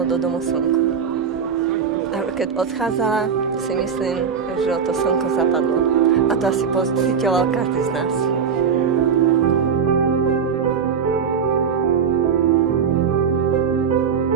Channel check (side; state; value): left; quieter; 6.6 dB